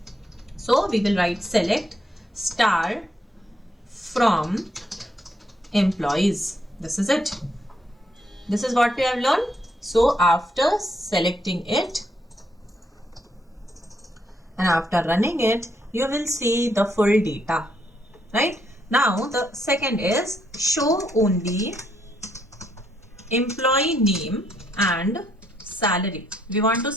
So we will write select star from employees. This is it. This is what we have learned. So after selecting it and after running it, you will see the full data, right? Now the second is show only employee name and salary. We want to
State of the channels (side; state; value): both; normal; correlation 0.75